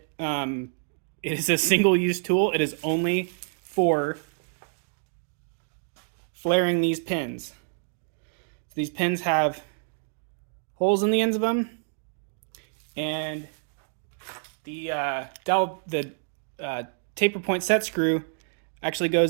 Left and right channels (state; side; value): silent; left; digital silence